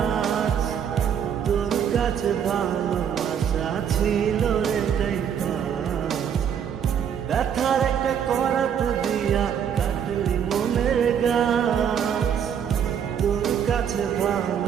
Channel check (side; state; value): left; quieter; 8.3 dB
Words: তোর কাছে ভালোবাসা ছিল রে তাই পাস। ব্যথার একটা করাত দিয়া কাটলি মনের গাছ, তোর কাছে